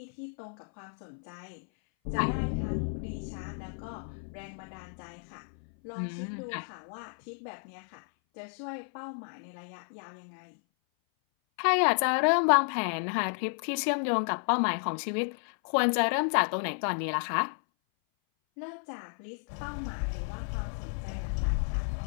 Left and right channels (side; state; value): right; silent; 57 dB below the other